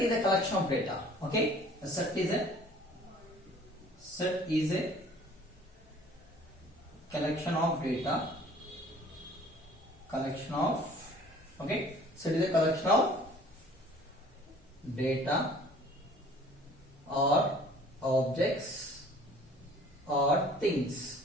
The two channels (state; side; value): normal; both; correlation 0.52